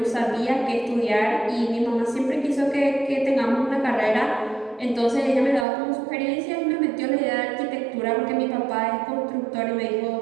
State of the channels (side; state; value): left; drops out; at 5.7 s